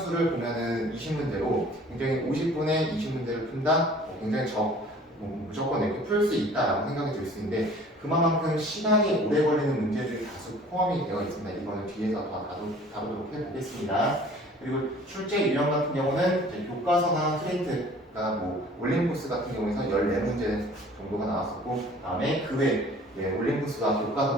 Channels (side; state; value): both; normal; correlation 0.50